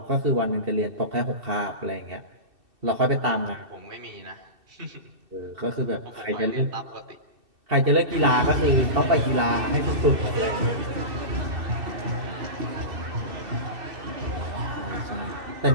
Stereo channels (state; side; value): late; left; 2.7 ms